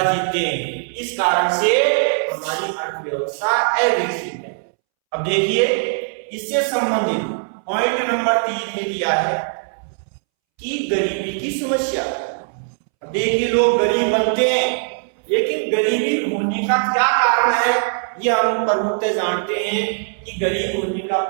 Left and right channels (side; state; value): left; silent; 65 dB below the other